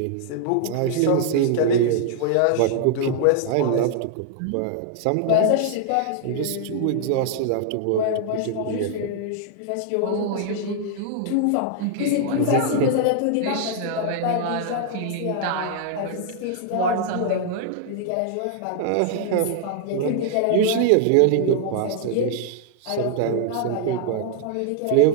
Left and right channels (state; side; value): different; both; correlation -0.01